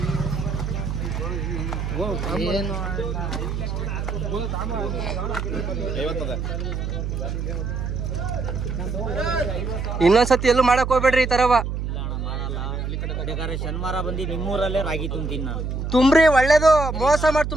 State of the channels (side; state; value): right; noise; hum, 3 dB below the sound